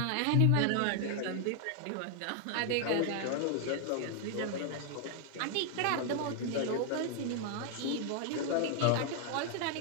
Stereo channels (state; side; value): different; both; correlation 0.00